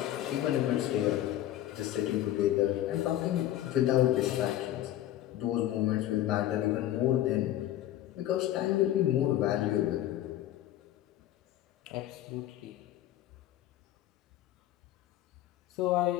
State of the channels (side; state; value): right; quieter; 13.3 dB